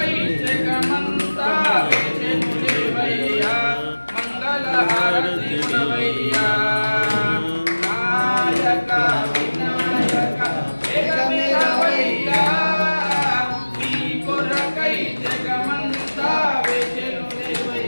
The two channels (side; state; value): both; inverted; correlation -1.00